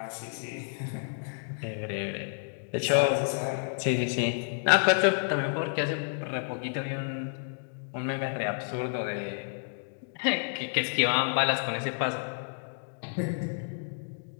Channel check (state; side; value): silent; right; digital silence